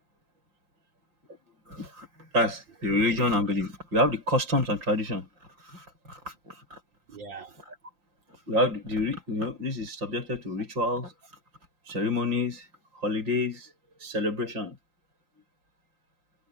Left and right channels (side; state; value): left; late; 5.7 ms